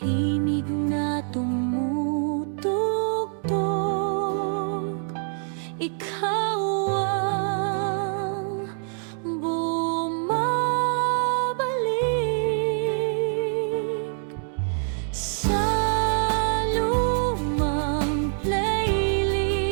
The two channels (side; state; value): left; silent; 62 dB below the other